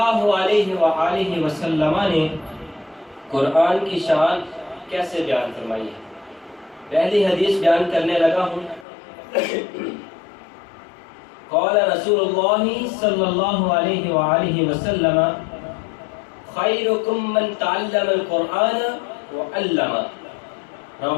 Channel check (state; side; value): drops out; right; at 8.8 s